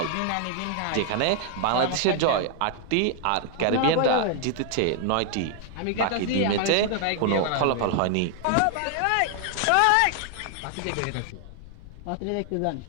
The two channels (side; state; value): both; different; correlation 0.00